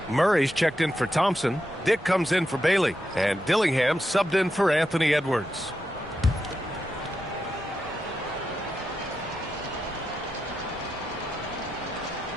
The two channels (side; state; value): both; normal; correlation 0.87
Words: Murray's checked in for Thompson. Dick comes in for Bailey. And Dillingham subbed in for Anthony Edwards.